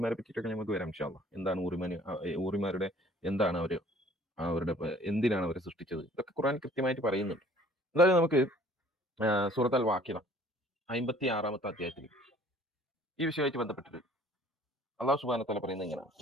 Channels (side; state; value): both; normal; correlation 0.53